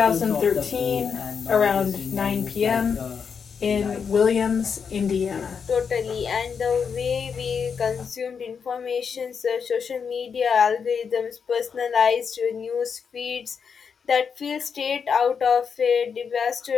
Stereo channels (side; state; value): right; quieter; 6.3 dB